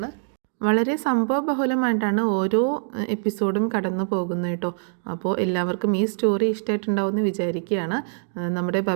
വളരെ സംഭവബഹുലമായിട്ടാണ് ഓരോ എപ്പിസോഡും കടന്നു പോകുന്നത് കേട്ടോ. അപ്പോൾ എല്ലാവർക്കും ഈ സ്റ്റോറി ഇഷ്ടമായിട്ടുണ്ടാവുമെന്ന് വിചാരിക്കുകയാണ്. നമ്മുടെ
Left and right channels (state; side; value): silent; left; digital silence